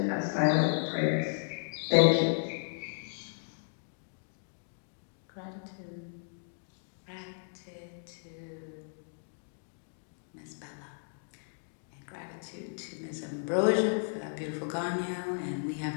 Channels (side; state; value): right; silent; digital silence